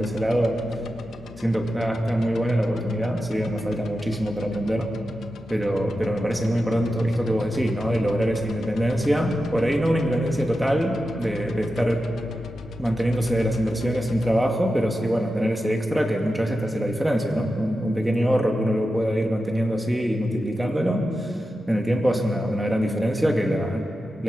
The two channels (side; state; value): both; normal; correlation 0.91